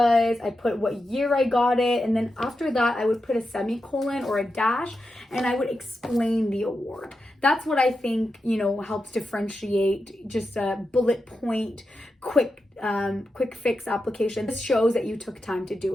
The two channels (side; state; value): both; normal; correlation 0.89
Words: I put what year I got it, and then after that I would put a semicolon or a dash, and I would explain the award. That's what I think, helps differentiate just a bullet point, quick fix application. This shows that you took time to